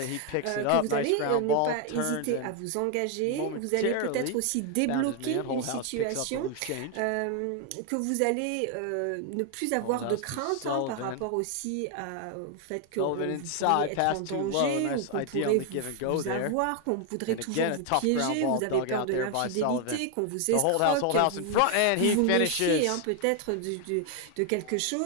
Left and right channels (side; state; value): both; different; correlation 0.01